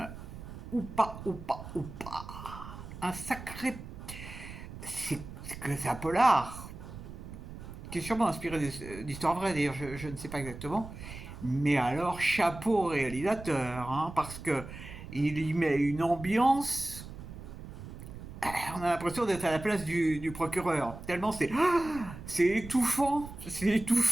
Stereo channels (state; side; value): noise; right; rumble, 12 dB below the sound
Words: Ou pas. Un sacré... C'est un polar qui est sûrement inspiré d'histoires vraies, d'ailleurs, je ne sais pas exactement. Mais alors, chapeau au réalisateur, hein, parce que il y met une ambiance. On a l'impression d'être à la place du procureur. Tellement c'est étouffant,